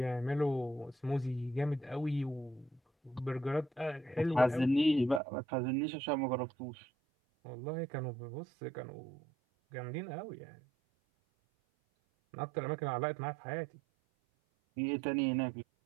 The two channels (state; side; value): drops out; left; at 5.2 s